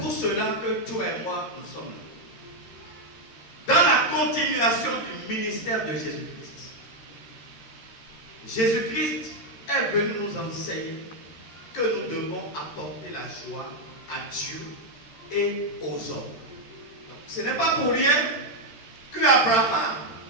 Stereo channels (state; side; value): late; right; 13 ms